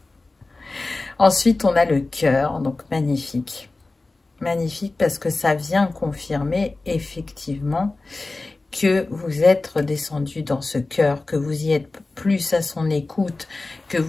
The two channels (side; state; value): right; quieter; 3.3 dB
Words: Ensuite, on a le cœur, donc magnifique. Magnifique parce que ça vient confirmer effectivement que vous êtes redescendu dans ce cœur, que vous y êtes plus à son écoute, que